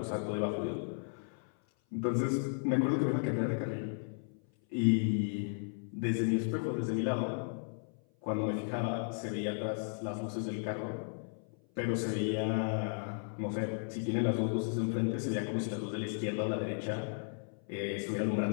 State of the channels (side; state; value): right; silent; 55 dB below the other